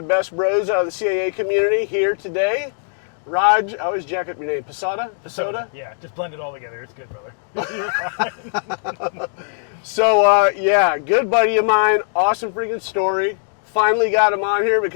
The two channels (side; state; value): right; silent; digital silence